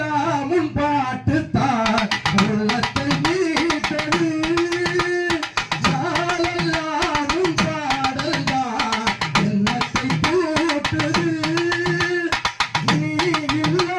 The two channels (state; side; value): identical; both; correlation 1.00